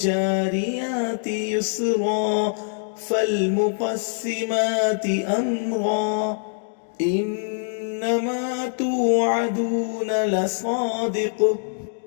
يسرا فالمقسمات أمرا إنما توعدون لصادق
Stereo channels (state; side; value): silent; right; digital silence